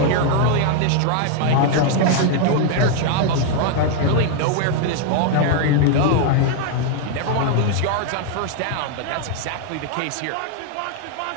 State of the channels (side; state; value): both; different; correlation 0.00